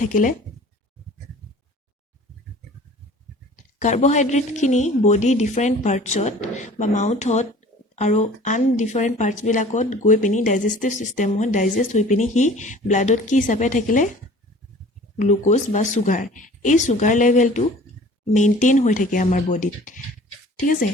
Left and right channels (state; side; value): normal; both; correlation 0.47